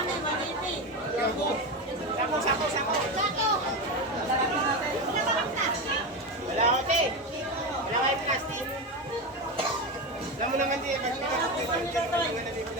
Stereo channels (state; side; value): normal; both; correlation 0.18